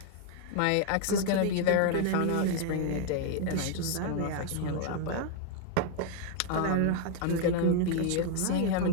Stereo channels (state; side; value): different; both; correlation 0.00